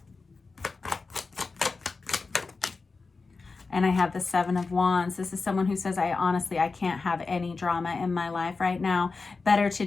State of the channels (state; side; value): quieter; right; 4.2 dB